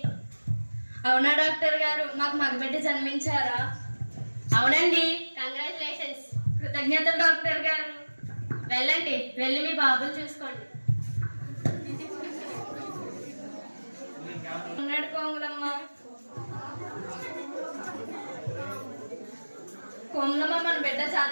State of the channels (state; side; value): inverted; both; correlation -1.00